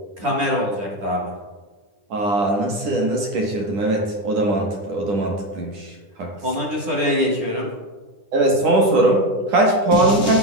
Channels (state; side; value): late; left; 10 ms